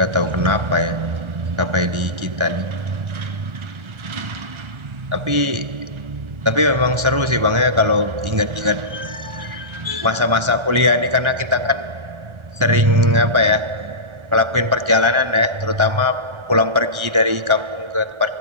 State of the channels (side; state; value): left; late; 1.4 ms